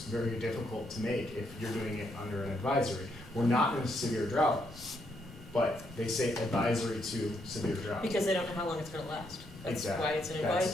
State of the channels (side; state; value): both; normal; correlation 0.76